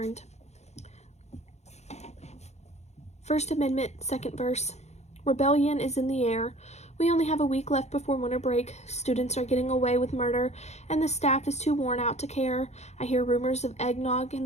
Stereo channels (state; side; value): late; right; 0.32 ms